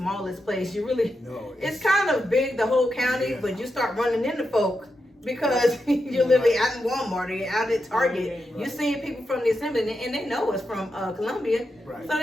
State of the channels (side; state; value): both; normal; correlation 0.87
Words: place. You really, No, it's kind of big, the whole county, Yeah. but you start running into folk because you're literally out in Walmart or you're out at Target. Right. You're seeing people from the assembly and they know us from Columbia. Right. So